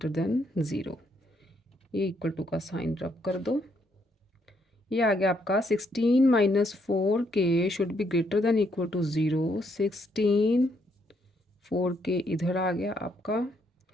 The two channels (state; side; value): normal; both; correlation 0.73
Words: than zero, ये इक्वल टू का साइन रब कर दो। ये आ गया आपका 16 minus 4k should be greater than equal to zero. 16 4k इधर आ गया आपका,